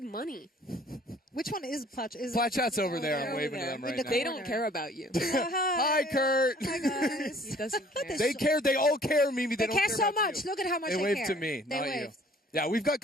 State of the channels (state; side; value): normal; both; correlation 0.55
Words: money. Which one is Plat? Plat Chat's over there. I'm waving to them right now. They don't care about you. Hi, Kurt. Hi, guys. He doesn't care. They care. They all care, Mimi. They don't care so about much. you. Look at how much They they waved care. to me, They not you. waved. Yeah, we've got